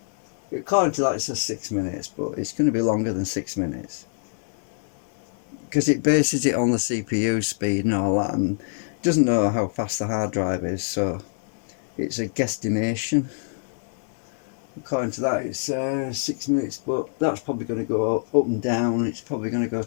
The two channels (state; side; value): silent; right; digital silence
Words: according to that it says 6 minutes, but it's going to be longer than 6 minutes because it bases it on the CPU speed and all that, and doesn't know how fast the hard drive is, so it's a guesstimation. According to that it's 6 minutes, but that's probably going to go up and down. It's probably going to go